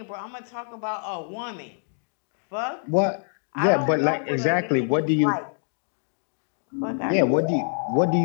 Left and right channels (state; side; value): silent; right; digital silence